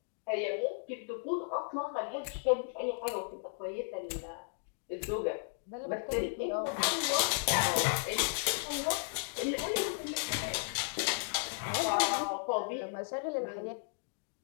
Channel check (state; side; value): silent; right; digital silence